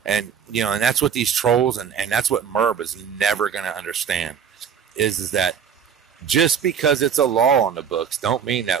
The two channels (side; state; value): left; quieter; 7.6 dB